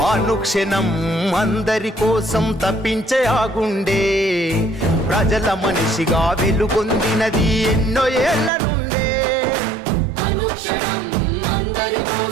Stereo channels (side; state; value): left; drops out; at 8.5 s